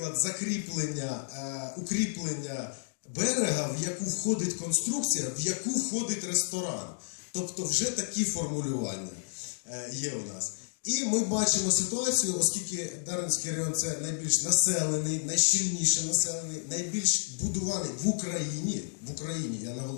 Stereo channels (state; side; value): silent; right; digital silence